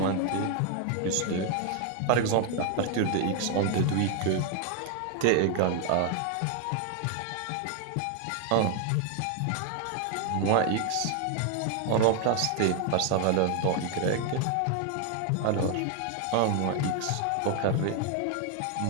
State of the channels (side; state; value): both; different; correlation 0.01